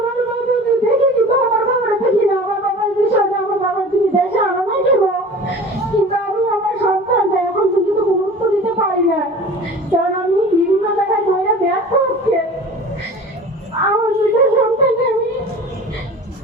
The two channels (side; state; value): both; normal; correlation 0.40